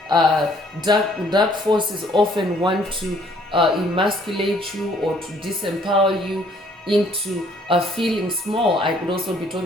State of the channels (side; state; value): both; normal; correlation 0.62